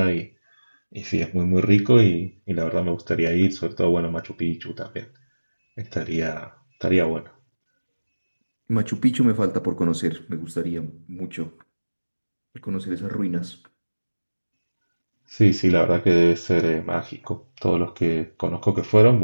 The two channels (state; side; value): inverted; both; correlation -1.00